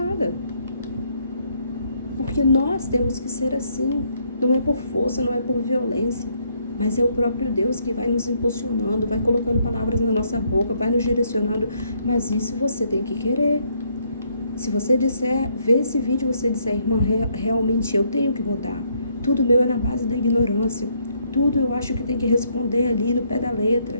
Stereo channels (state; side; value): inverted; both; correlation -0.71